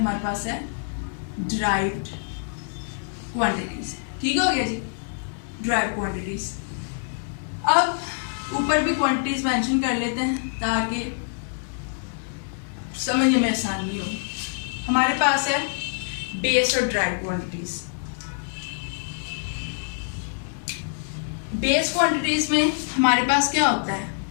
पास है ड्राइव्ड क्वांटिटीज। ठीक हो गया जी, ड्राइव क्वांटिटीज। अब ऊपर भी क्वांटिटीज मेंशन कर लेते हैं ताकि समझने में आसानी हो। हमारे पास है बेस और ड्राइव क्वांटिटीज। बेस क्वांटिटीज में हमारे पास क्या होता है?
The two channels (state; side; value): silent; right; 61 dB below the other